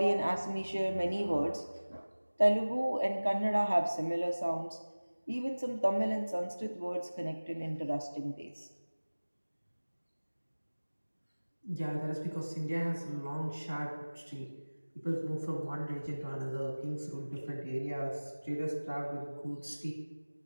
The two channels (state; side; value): inverted; both; correlation -1.00